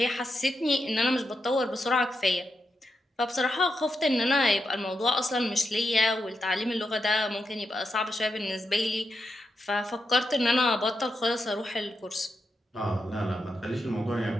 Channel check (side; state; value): both; normal; correlation 0.86